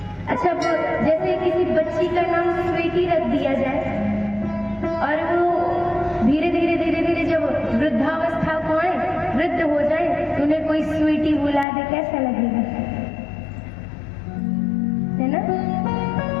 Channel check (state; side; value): drops out; right; at 11.7 s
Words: अच्छा, जैसे किसी बच्ची का नाम स्वीटी रख दिया जाए और वो धीरे धीरे जब वृद्धावस्था को आए, वृद्ध हो जाए, तो उन्हें कोई स्वीटी बुला दे, कैसा लगेगा, है ना?